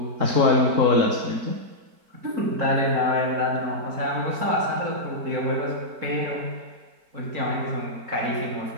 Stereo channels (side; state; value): left; late; 4.5 ms